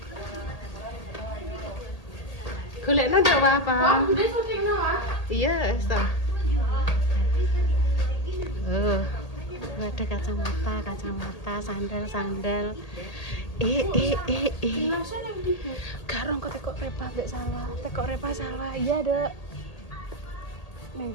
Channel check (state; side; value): late; right; 1.8 ms